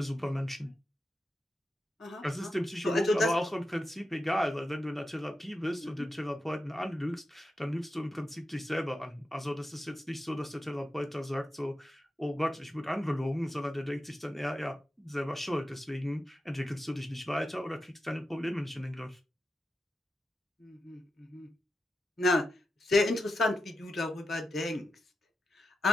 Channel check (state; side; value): normal; both; correlation 0.89